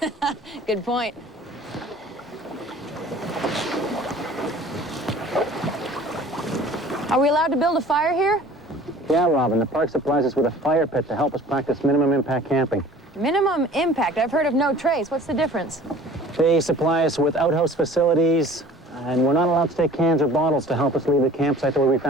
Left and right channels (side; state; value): both; normal; correlation 0.46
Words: Good point. Are we allowed to build a fire here? Yeah, Robin, the park supplies us with a fire pit to help us practice minimum impact camping. Minimum impact. I've heard of no trace. What's the difference? They supply us with outhouse facilities, and we're not allowed to take cans or bottles to help us leave the campsite the way we